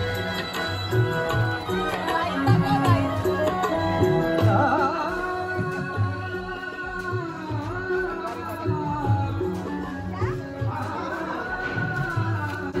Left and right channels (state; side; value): identical; both; correlation 1.00